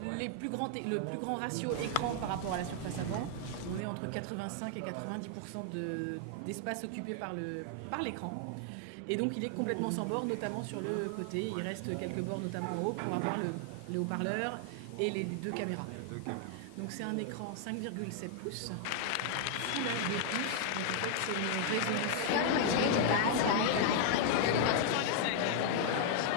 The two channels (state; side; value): different; both; correlation 0.00